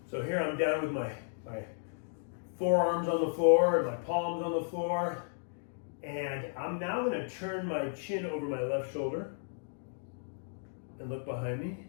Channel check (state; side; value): silent; right; digital silence